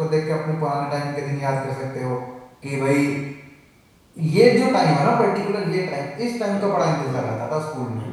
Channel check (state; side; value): identical; both; correlation 1.00